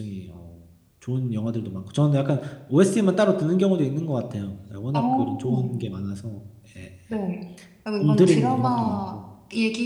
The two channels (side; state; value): both; identical; correlation 1.00